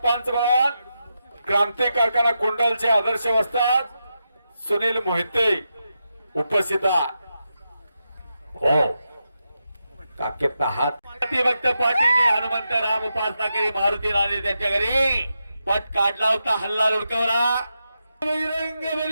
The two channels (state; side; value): inverted; both; correlation -0.87